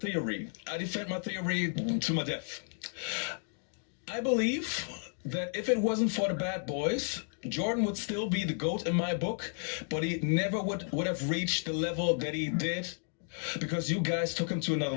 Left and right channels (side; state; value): right; silent; 56 dB below the other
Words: I defend my theory to my death. I believe that if it wasn't for the bad boys, Jordan would still be the GOAT in my book, but he never would have reached the level that he did because you guys took him to another